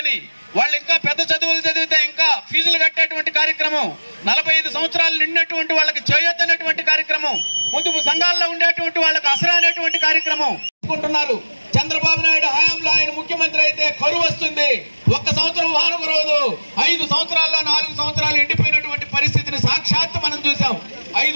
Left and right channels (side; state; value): both; inverted; correlation -1.00